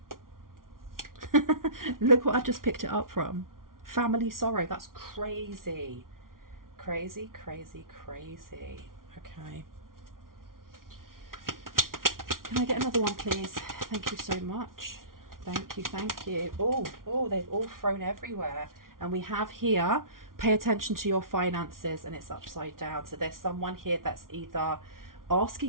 Look what I've just picked it up from. Family sorrow. That's crazy. Crazy, crazy, crazy. Okay. Can I get another one, please? Thank you so much. Thank you, thank you. Oh, they've all thrown everywhere. And we have here, pay attention to your finances, and it's upside down. So there's someone here that's either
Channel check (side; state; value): left; late; 0.91 ms